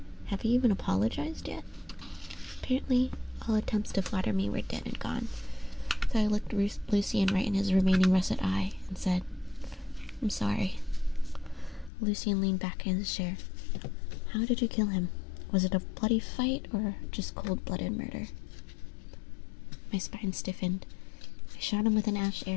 Have you even apologized yet? Apparently, all attempts to flatter me were dead and gone. So I looked Lucian right in his remaining russet eye and said, I'm sorry. Lucian leaned back in his chair. How did you kill him? Was it a bloody fight or just cold-blooded murder? My spine stiffened. I shot him with an ash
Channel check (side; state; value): right; drops out; at 11.9 s